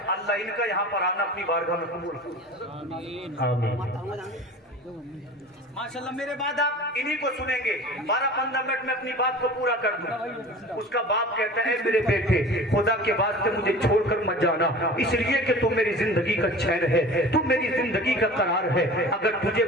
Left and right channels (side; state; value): both; normal; correlation 0.39